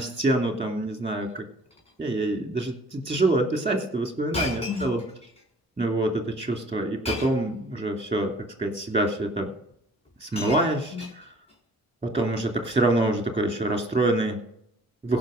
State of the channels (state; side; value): normal; both; correlation 0.53